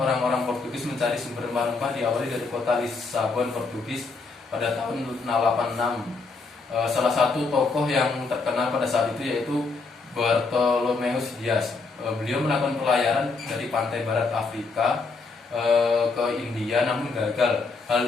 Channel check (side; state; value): right; quieter; 4.1 dB